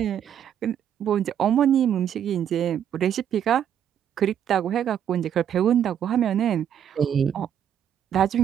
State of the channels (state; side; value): quieter; left; 9.4 dB